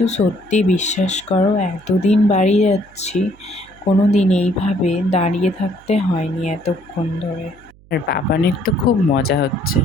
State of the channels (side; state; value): right; noise; hum, 27 dB below the sound